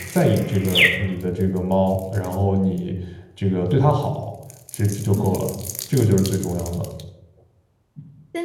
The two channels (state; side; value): identical; both; correlation 1.00